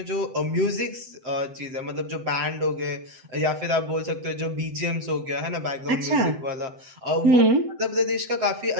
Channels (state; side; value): late; left; 7.8 ms